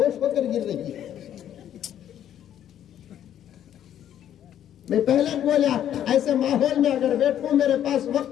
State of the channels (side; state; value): right; quieter; 10.6 dB